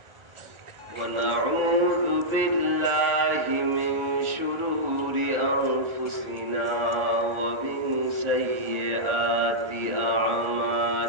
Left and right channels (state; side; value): late; left; 1.4 ms